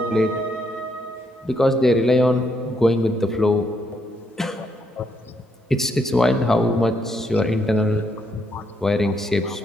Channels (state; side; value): normal; both; correlation 0.75